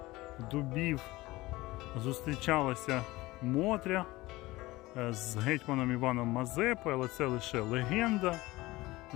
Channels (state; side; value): quieter; right; 19.6 dB